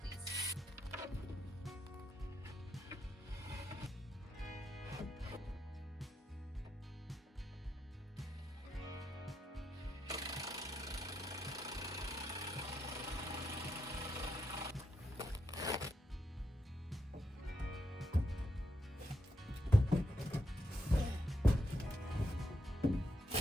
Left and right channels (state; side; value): normal; both; correlation 0.82